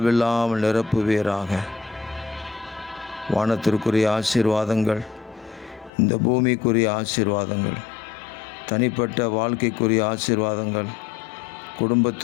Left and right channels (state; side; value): drops out; right; at 5.9 s